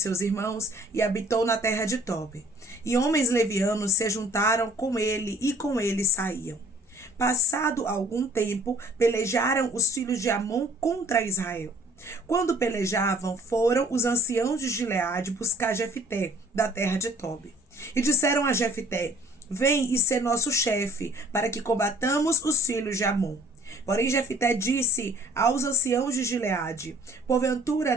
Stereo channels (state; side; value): normal; both; correlation 0.55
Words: irmãos e habitou na terra de Tobi. E homens levianos se juntaram com ele e com ele saíam. Passado algum tempo, pelejaram os filhos de Amon contra Israel. Quando pelejavam, foram os anciãos de Gileade buscar Jefté da terra de Tobi. E disseram a Jefté: Vem e sê nosso chefe, para que combatamos os filhos de Amon. Porém Jefté disse aos anciãos de Gileade: Porventura